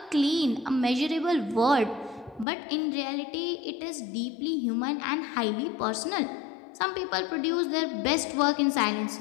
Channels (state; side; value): drops out; right; at 2.5 s